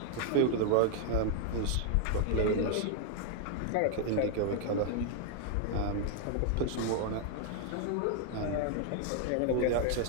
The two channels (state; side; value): different; both; correlation 0.00